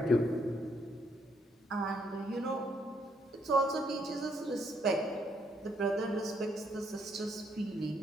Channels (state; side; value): normal; both; correlation 0.72